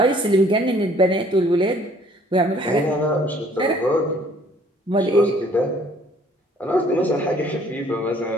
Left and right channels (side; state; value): both; normal; correlation 0.58